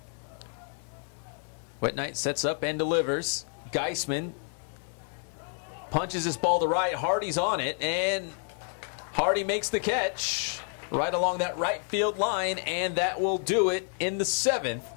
Wet Night sets up and delivers. Geisman punches this ball to right. Hardy's on it, and Hardy makes the catch right along that right field line, and that will do it in the 7th.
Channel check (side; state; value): right; silent; 56 dB below the other